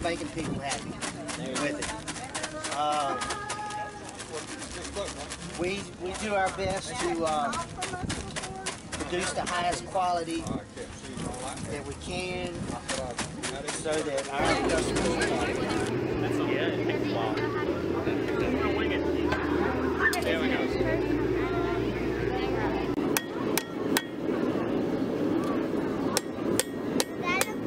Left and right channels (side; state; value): both; identical; correlation 1.00